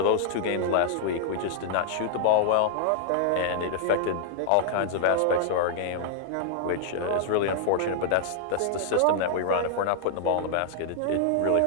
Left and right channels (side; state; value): both; different; correlation -0.01